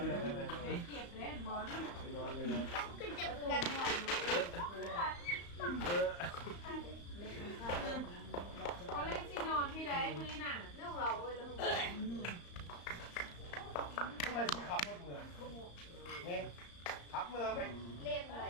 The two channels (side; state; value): right; late; 35 ms